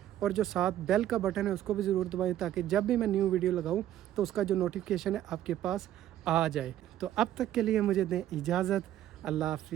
और जो साथ बेल का बटन है उसको भी ज़रूर दबाएं, ताकि जब भी मैं न्यू वीडियो लगाऊं तो उसका जो नोटिफिकेशन है आपके पास आ जाए। तो अब तक के लिए मुझे दें इजाज़त। अल्लाह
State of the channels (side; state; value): left; quieter; 12.3 dB